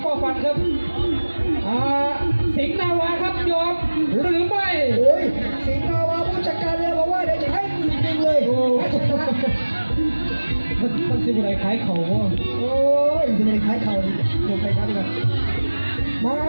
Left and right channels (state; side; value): inverted; both; correlation -1.00